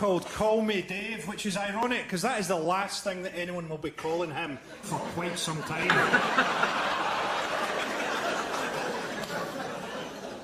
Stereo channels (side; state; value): both; identical; correlation 1.00